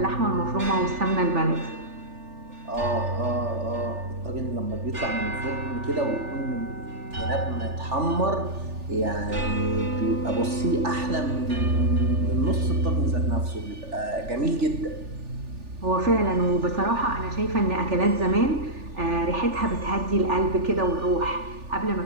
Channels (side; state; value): left; late; 3.4 ms